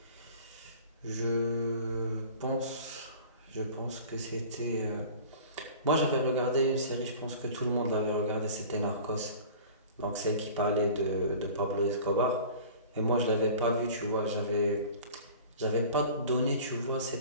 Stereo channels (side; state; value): both; inverted; correlation -0.42